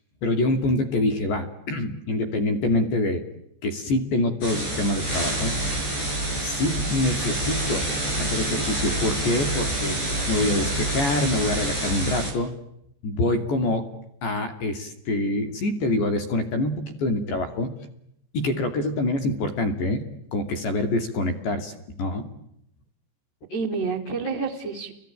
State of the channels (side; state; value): right; late; 14 ms